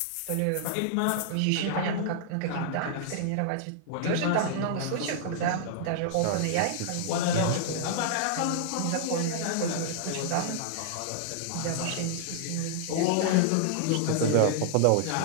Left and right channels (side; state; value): both; different; correlation -0.01